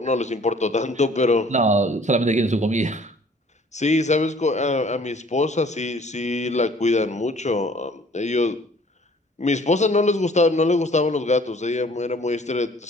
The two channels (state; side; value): normal; both; correlation 0.54